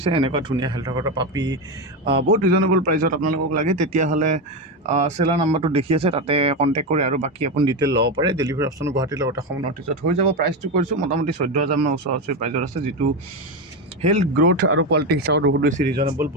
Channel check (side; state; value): both; normal; correlation 0.14